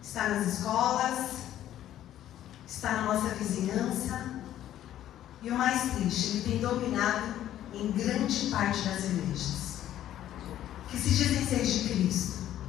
está nas escolas, está na nossa vizinhança. E o mais triste, ele tem dominado em grande parte das igrejas, que se dizem ser de Cristo,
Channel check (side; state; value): right; quieter; 12.1 dB